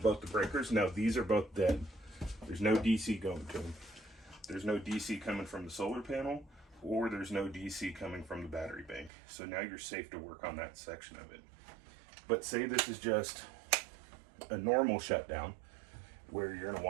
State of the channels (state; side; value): drops out; left; at 9.1 s